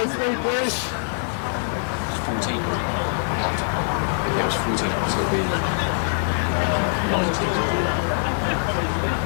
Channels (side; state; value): right; silent; 56 dB below the other